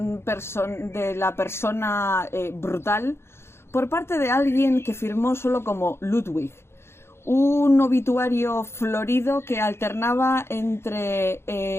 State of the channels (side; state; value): right; late; 0.12 ms